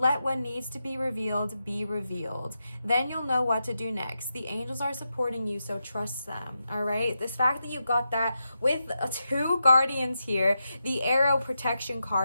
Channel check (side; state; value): both; inverted; correlation -0.87